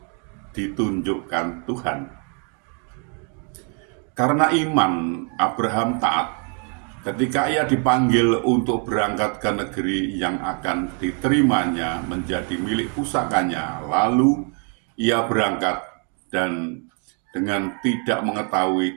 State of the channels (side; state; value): left; quieter; 38.7 dB